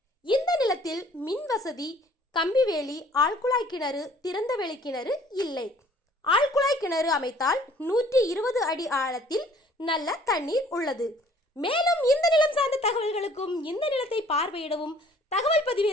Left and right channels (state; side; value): normal; both; correlation 0.56